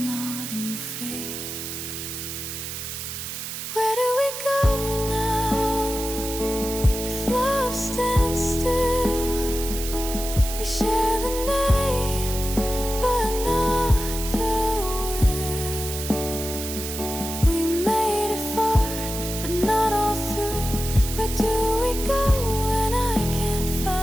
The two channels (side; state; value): right; noise; hiss, 7 dB below the sound